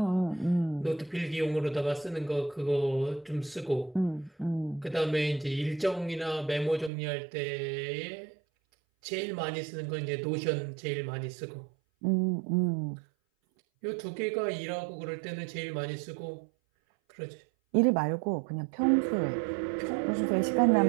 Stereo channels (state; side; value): drops out; left; at 6.9 s